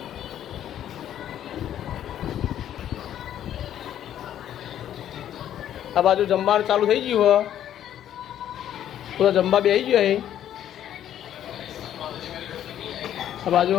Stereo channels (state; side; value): quieter; right; 10.9 dB